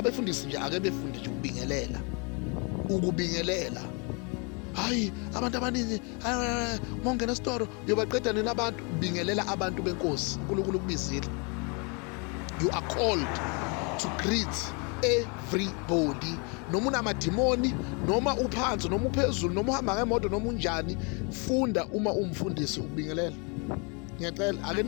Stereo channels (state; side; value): quieter; right; 33.4 dB